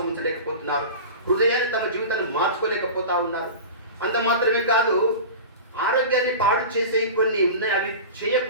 ఉంచలేకపోతున్నారు. హృదయాన్ని తమ జీవితాన్ని మార్చుకోలేకపోతా ఉన్నారు. అంత మాత్రమే కాదు, ఆరోగ్యాన్ని పాడు చేసే కొన్ని ఉన్నాయి, అవి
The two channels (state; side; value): inverted; both; correlation -0.32